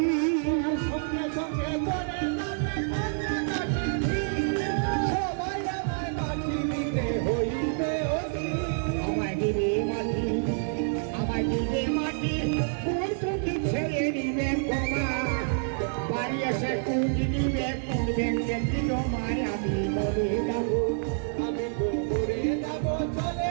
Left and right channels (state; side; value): silent; left; digital silence